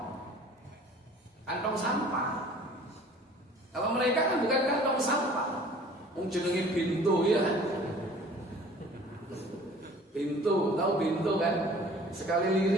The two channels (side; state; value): both; normal; correlation 0.49